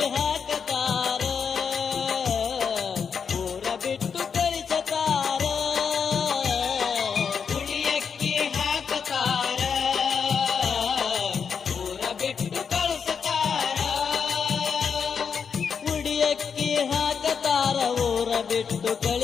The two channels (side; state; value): right; quieter; 6.4 dB